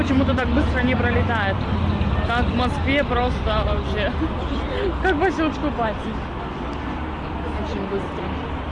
так быстро не пролетает. Как в Москве просто вообще. Как по щелчку пальцев. Очень быстро.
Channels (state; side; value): identical; both; correlation 1.00